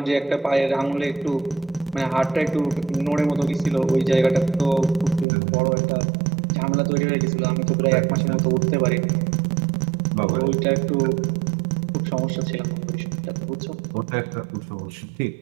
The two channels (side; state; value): left; drops out; at 5.2 s